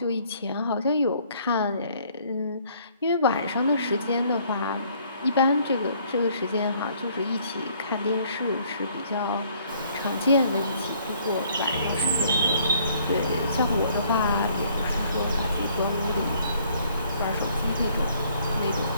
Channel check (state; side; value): inverted; both; correlation -0.62